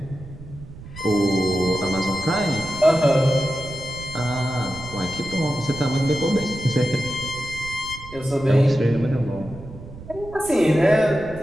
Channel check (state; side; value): noise; right; rumble, 15 dB below the sound